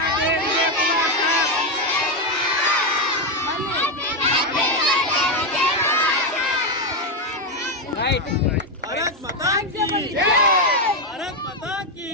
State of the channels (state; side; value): normal; both; correlation 0.07